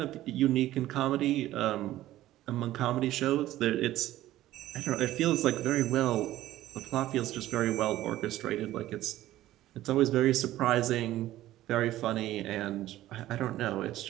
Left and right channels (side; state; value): left; quieter; 14.7 dB